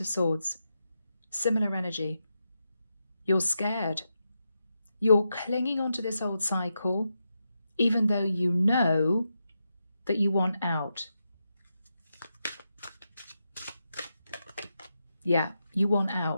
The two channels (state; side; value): inverted; both; correlation -0.86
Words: Swords. Similar energy. You're scared. You're clinging onto this old cycle, even though you know that you want out. Yeah, you want